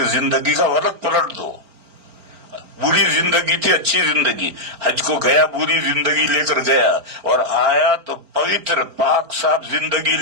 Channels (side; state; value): left; late; 4.4 ms